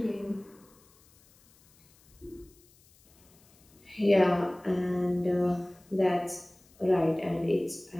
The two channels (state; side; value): noise; left; hiss, 29 dB below the sound